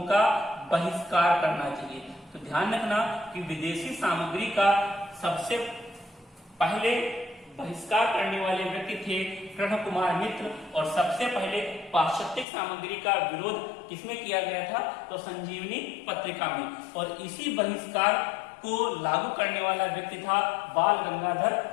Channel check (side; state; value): right; drops out; at 12.5 s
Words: का बहिष्कार करना चाहिए। तो ध्यान रखना कि विदेशी सामग्री का सबसे पहले बहिष्कार करने वाले व्यक्ति थे कृष्ण कुमार मित्र, और सबसे पहले पाश्चात्य सामग्री का विरोध किसमें किया गया था, तो संजीवनी पत्रिका में। और इसी बहिष्कार को लागू करने वाला व्यक्ति था बाल गंगाधर